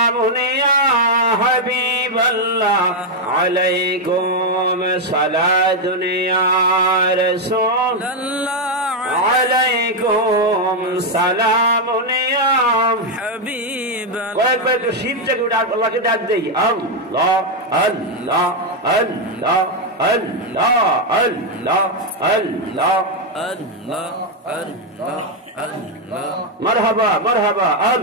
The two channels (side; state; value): both; normal; correlation 0.01